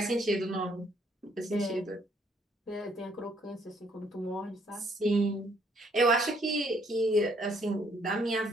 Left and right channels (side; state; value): both; normal; correlation 0.67